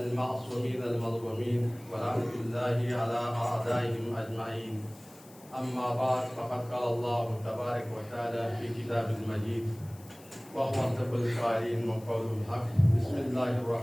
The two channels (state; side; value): noise; left; hiss, 23 dB below the sound